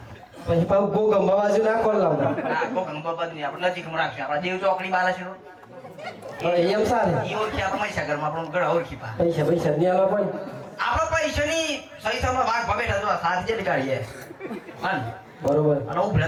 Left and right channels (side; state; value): both; identical; correlation 1.00